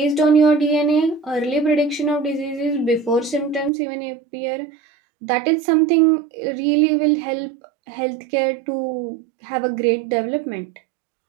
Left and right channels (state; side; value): drops out; left; at 3.7 s